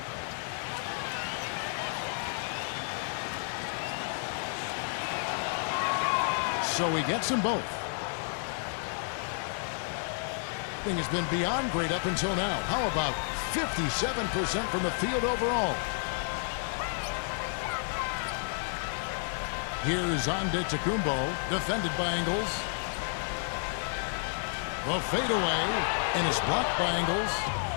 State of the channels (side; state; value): right; silent; digital silence